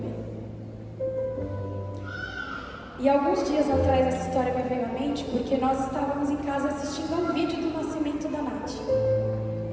E alguns dias atrás essa história me veio à mente porque nós estávamos em casa assistindo ao vídeo do nascimento da Nath.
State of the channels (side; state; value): both; identical; correlation 1.00